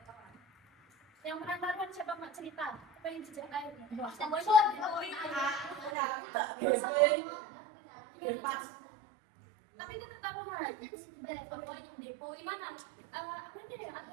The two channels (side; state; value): left; drops out; at 6.0 s